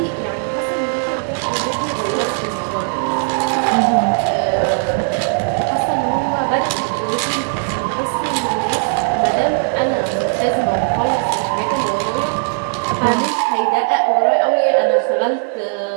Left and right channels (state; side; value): silent; left; digital silence